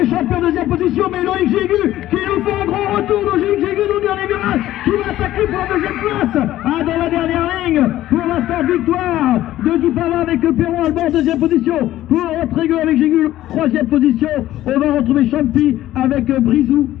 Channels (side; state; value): right; quieter; 14.2 dB